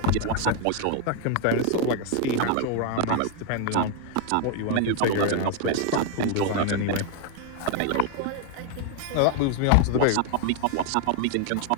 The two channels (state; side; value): different; both; correlation 0.01